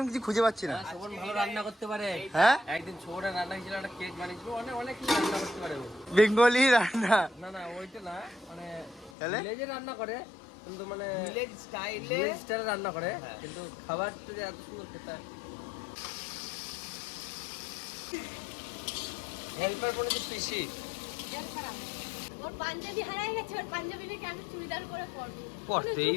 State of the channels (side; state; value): right; drops out; at 9.1 s